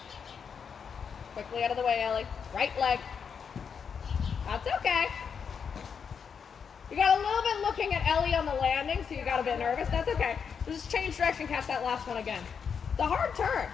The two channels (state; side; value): quieter; right; 6.6 dB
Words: Quickly out of the way, Ellie. Right leg. That's okay. You got a little bit looking at Ellie on the landing, so you got a bit nervous. That's okay. Just change direction, catch that last one again. It's a hard turn.